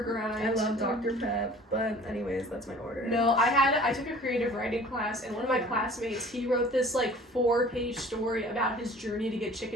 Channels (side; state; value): both; normal; correlation 0.47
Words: I love Dr. Pep, but anyways, that's my order. No, I took a creative writing class, and one of my classmates, he wrote this like 4-page story about his journey to get